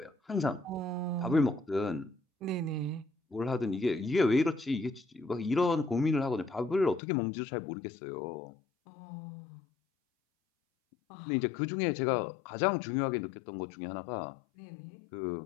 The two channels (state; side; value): drops out; right; at 7.0 s